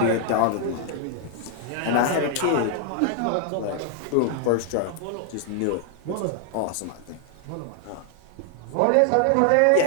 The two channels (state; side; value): different; both; correlation 0.00